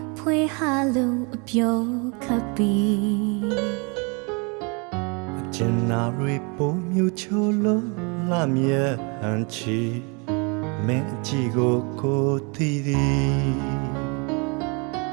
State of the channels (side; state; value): left; quieter; 32.2 dB